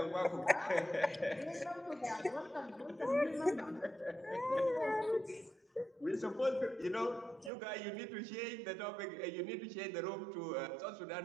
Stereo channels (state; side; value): drops out; left; at 7.5 s